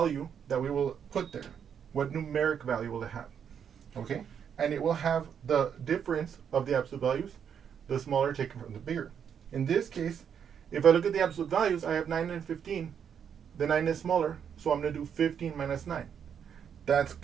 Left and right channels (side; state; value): left; quieter; 7.9 dB